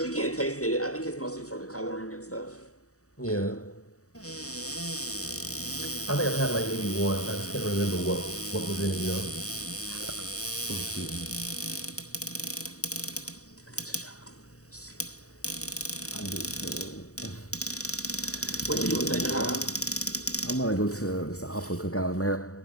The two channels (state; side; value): late; right; 0.65 ms